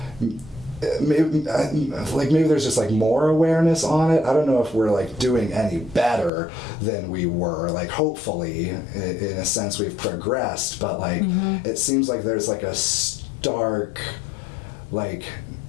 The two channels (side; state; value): right; drops out; at 6.3 s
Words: maybe there's just like more awareness on it. I don't know if we're like doing any better than we were, like hopefully in a sense we've progressed, but like it seems like there's like a stark like